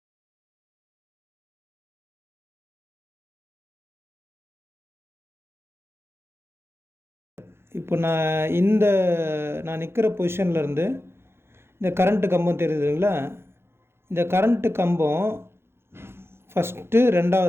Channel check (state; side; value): late; left; 0.12 ms